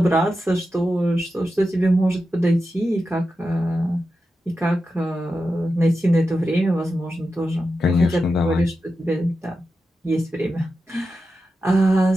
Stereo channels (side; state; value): both; normal; correlation 0.90